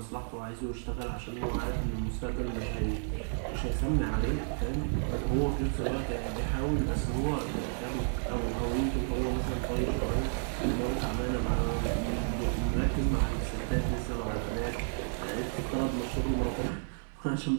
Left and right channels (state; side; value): silent; left; digital silence